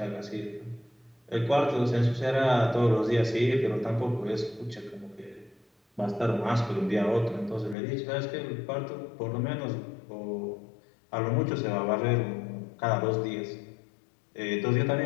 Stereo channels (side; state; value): right; drops out; at 7.8 s